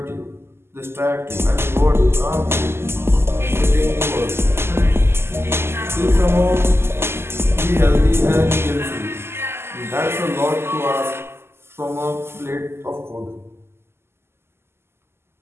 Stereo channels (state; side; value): late; left; 0.12 ms